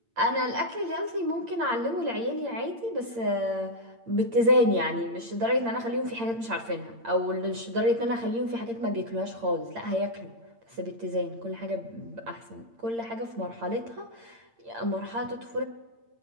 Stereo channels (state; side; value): late; left; 8.7 ms